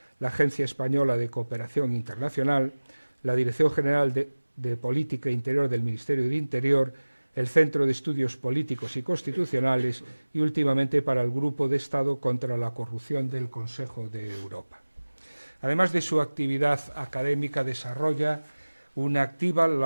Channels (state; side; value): inverted; both; correlation -1.00